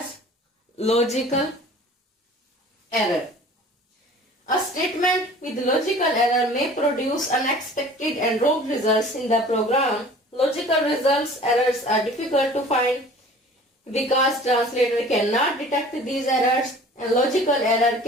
logical error. A statement with logical error may produce unexpected and wrong results in the program. Logical results errors are difficult to find because translator cannot detect these errors, and logical error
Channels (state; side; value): normal; both; correlation 0.46